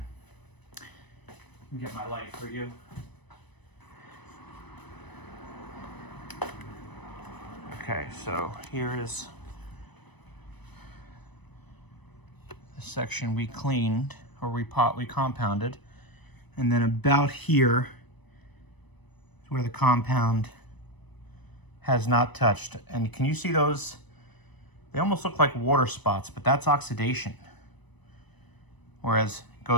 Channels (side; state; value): right; late; 1.0 ms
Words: Let me get my light for you. Okay, so here is the section we cleaned, or we compounded, and then about here is where the compound has not touched. And can you see those? They almost look like water spots, but that's oxidation. Whereas it